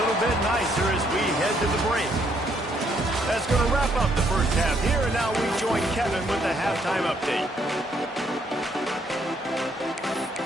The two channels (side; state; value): both; normal; correlation 0.70